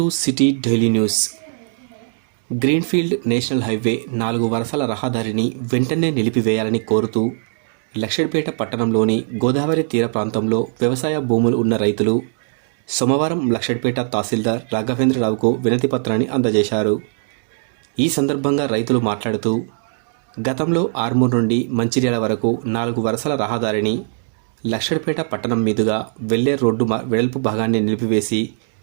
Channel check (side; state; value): left; silent; 64 dB below the other